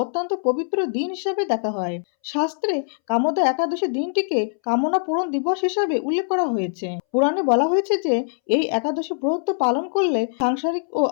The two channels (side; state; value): right; silent; 64 dB below the other